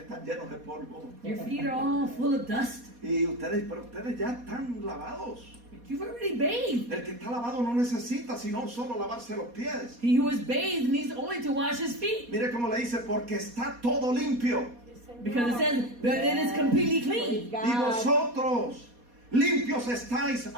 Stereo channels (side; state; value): left; late; 4.2 ms